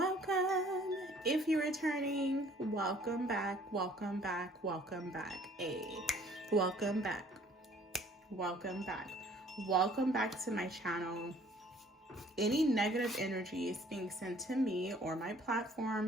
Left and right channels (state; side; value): normal; both; correlation 0.56